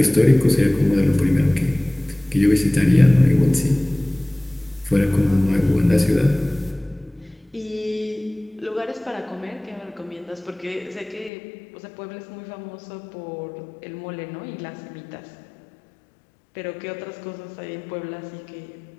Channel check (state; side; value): drops out; right; at 11.3 s